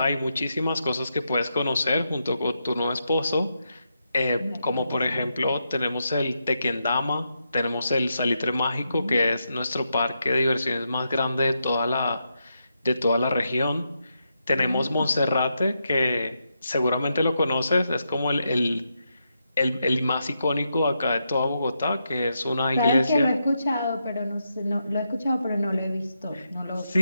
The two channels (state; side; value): inverted; both; correlation -0.84